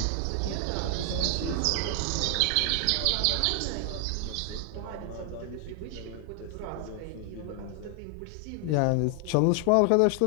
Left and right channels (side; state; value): both; different; correlation 0.00